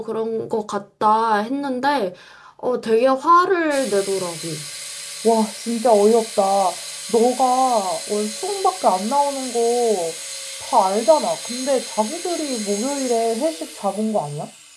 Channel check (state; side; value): identical; both; correlation 1.00